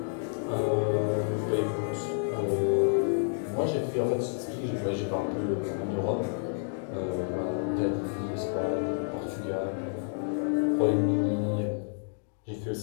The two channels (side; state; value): right; silent; digital silence